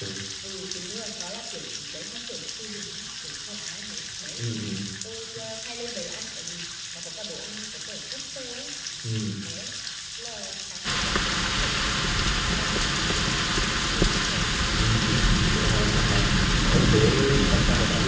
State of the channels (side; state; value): both; identical; correlation 1.00